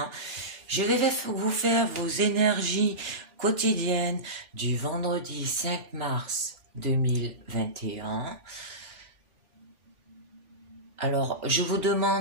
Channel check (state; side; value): late; left; 3.5 ms